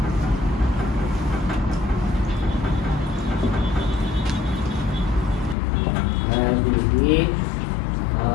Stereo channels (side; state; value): right; drops out; at 5.6 s